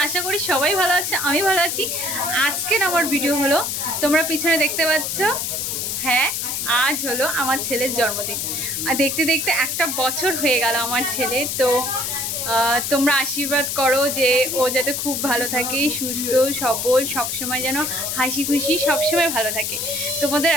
আশা করি সবাই ভালো আছে, আমি ভালো আছি। আজকের আমার ভিডিও হলো, তোমরা পিছনে দেখতে পাচ্ছ, হ্যাঁ আজ হলো আমার ছেলের জন্মদিন। আর দেখতে দেখতে একটা বছর হয়ে গেল আমার ছেলে। তো তোমরা আশীর্বাদ করো যে ও যাতে খুব ভালো থাকে, সুস্থ সবল, সবসময় যেন হাসি খুশি সবসময় ভালো থাকে। তোমাদের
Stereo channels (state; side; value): noise; left; hiss, 2 dB below the sound